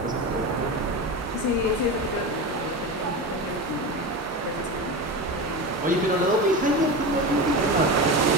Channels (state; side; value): normal; both; correlation 0.23